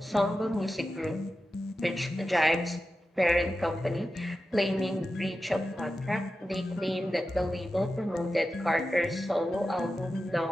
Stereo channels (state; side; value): normal; both; correlation 0.91